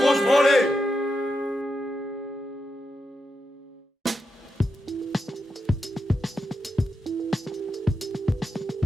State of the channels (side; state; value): both; normal; correlation 0.86